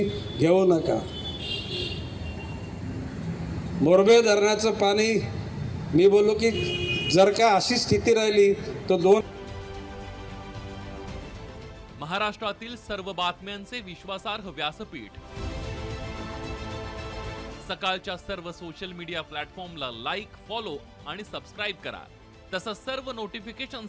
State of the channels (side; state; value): both; identical; correlation 1.00